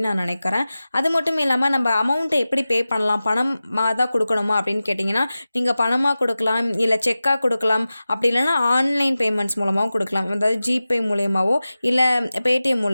நான் நினைக்கிறேன். அது மட்டும் இல்லாமல் நம்ம அமௌண்ட்டை எப்படி பே பண்ணலாம், பணமாக தான் கொடுக்கணுமா அப்படின்னு கேட்டிங்கன்னா, நீங்கள் பணமாக கொடுக்கலாம், இல்லை செக்காக கொடுக்கலாம், அப்படி இல்லைன்னா ஆன்லைன் பேமெண்ட்ஸ் மூலமாகவும் கொடுக்கலாம். அதாவது ஜிபே மூலயமாவோ இல்லை பேடிஎம்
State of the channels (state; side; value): inverted; both; correlation -0.95